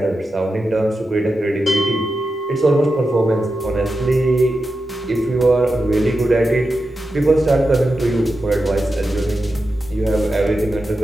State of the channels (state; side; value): normal; both; correlation 0.90